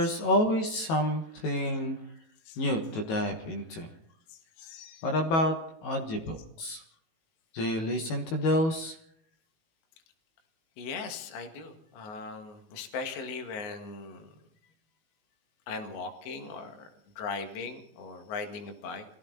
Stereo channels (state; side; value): late; right; 18 ms